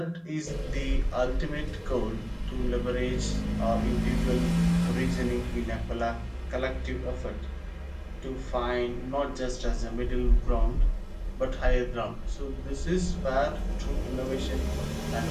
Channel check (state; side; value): identical; both; correlation 1.00